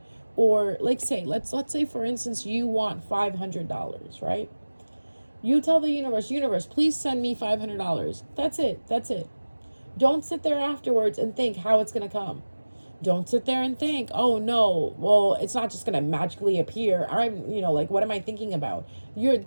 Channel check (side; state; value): both; inverted; correlation -1.00